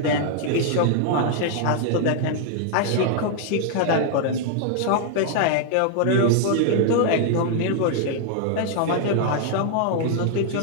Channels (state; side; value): different; both; correlation 0.00